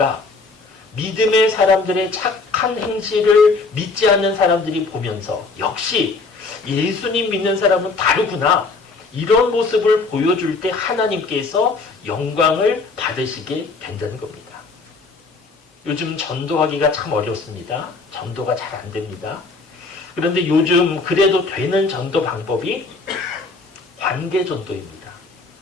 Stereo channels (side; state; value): right; quieter; 3.9 dB